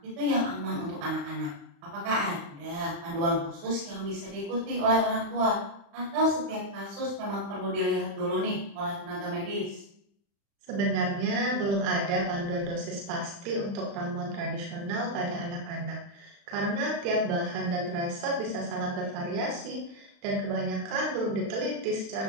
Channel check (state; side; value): late; left; 35 ms